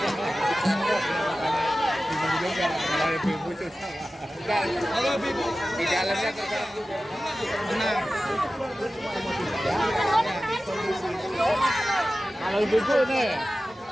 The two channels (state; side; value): normal; both; correlation 0.95